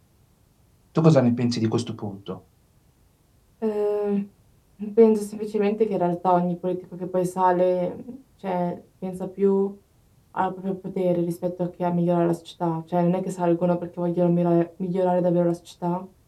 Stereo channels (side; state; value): both; identical; correlation 1.00